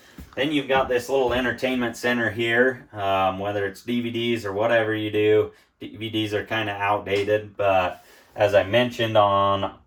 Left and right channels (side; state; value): both; identical; correlation 1.00